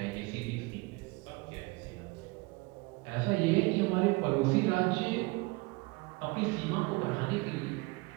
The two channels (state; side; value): quieter; left; 25.6 dB